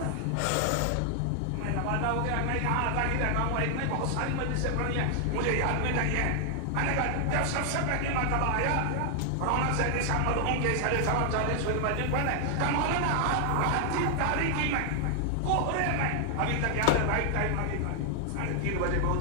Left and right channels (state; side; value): different; both; correlation 0.00